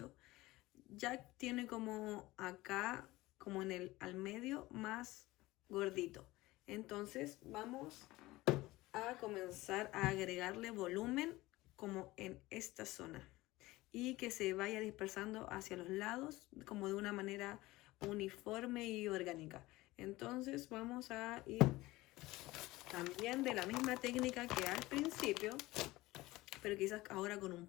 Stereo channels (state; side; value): quieter; right; 19.1 dB